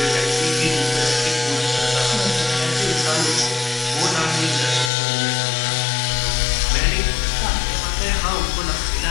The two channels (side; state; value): right; drops out; at 4.9 s